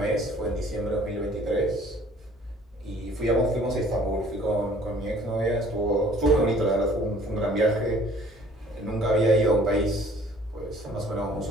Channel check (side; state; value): both; normal; correlation 0.54